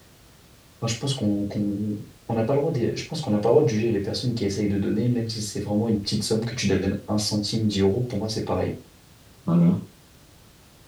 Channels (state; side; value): identical; both; correlation 1.00